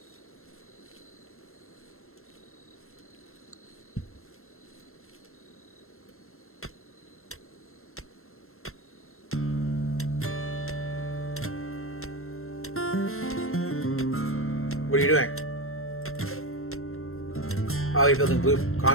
What are you doing? Oh, you're building blue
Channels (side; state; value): right; late; 0.62 ms